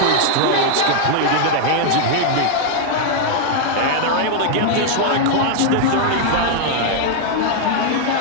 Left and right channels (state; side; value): different; both; correlation 0.00